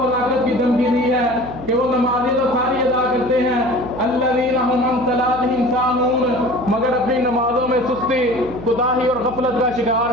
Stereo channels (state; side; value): noise; right; hum, 14 dB below the sound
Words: کی دھمکی دی ہے کہ وہ نمازیں تو ساری ادا کرتے ہیں، الذین هم عن صلاتهم ساہون، مگر اپنی نمازوں میں سستی، کوتاہی اور غفلت کا شکار